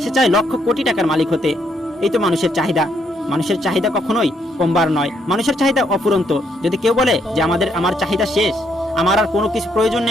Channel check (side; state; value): both; normal; correlation 0.73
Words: সে চায় লক্ষ কোটি টাকার মালিক হতে। এই তো মানুষের চাহিদা। মানুষের চাহিদা কখনোই কমবার নয়। মানুষের চাহিদা অফুরন্ত। যদি কেউ বলে যে আমার চাহিদা শেষ, আমার আর কোনো কিছু প্রয়োজন